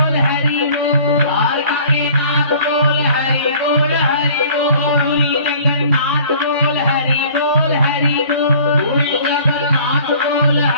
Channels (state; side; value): inverted; both; correlation -0.51